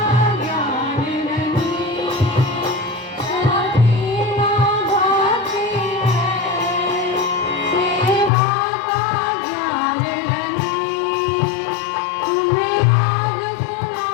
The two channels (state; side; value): drops out; right; at 8.3 s